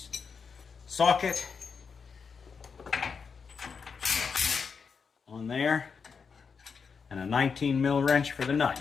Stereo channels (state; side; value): quieter; right; 5.7 dB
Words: socket on there, and a 19 mil wrench for the